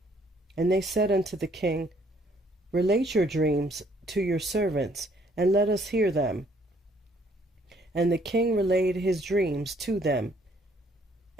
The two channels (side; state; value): both; normal; correlation 0.64